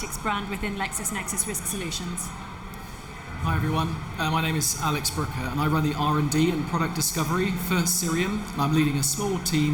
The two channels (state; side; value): identical; both; correlation 1.00